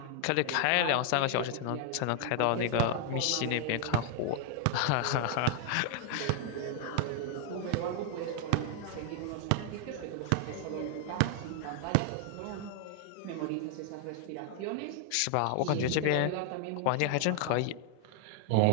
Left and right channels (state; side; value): different; both; correlation 0.00